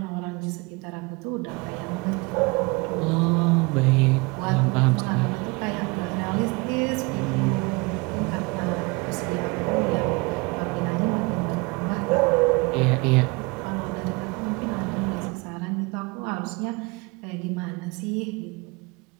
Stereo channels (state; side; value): quieter; left; 26.6 dB